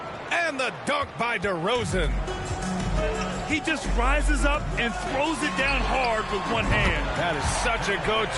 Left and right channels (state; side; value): identical; both; correlation 1.00